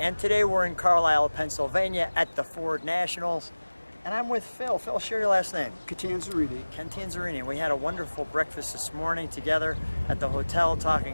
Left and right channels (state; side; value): inverted; both; correlation -1.00